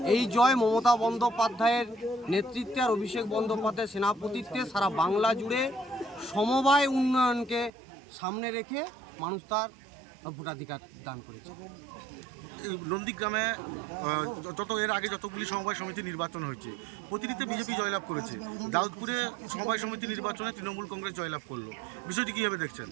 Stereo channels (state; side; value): drops out; left; at 7.7 s